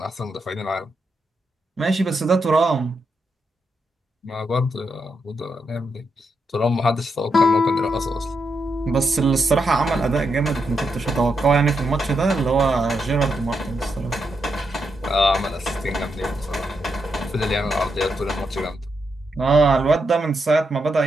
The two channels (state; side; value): normal; both; correlation 0.83